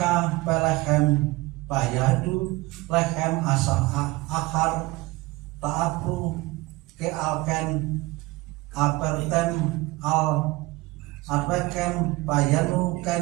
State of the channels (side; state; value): left; quieter; 21.0 dB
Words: Pelechem Bayadu Lechem Asal Akhar Ta'apru Kealken Apertem Al Adwekem Bayanu